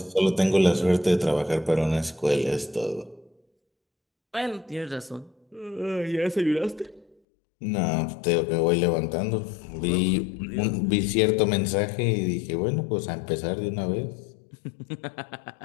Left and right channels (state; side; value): drops out; right; at 7.2 s